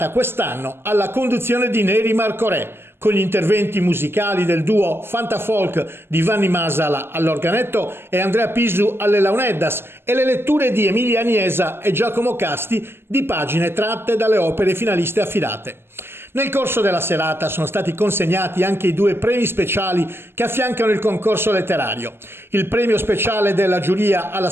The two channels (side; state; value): left; late; 0.11 ms